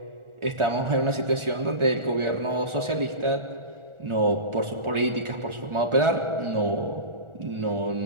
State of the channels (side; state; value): left; late; 1.4 ms